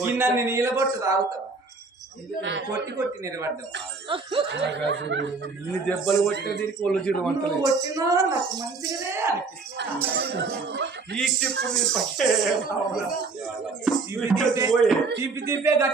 దాన్ని నీళ్ళబొట్టు తాగుతావు కొట్టి కొట్టి నిలబడ్డావు ఇన్ని దెబ్బలు కొట్టిన దీనికి ఒళ్ళు జీడు నువ్వు వంటలు కొట్టినా నాకు మంచిగానే అనిపిస్తుంది ఈ చెప్పు నీ పక్కే రావాలా? తిప్పి తిప్పే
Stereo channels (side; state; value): left; quieter; 4.2 dB